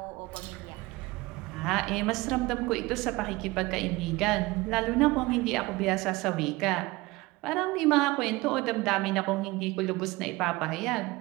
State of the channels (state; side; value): quieter; left; 21.3 dB